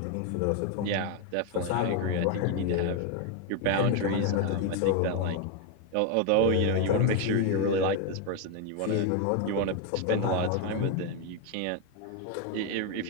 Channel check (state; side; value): different; both; correlation 0.02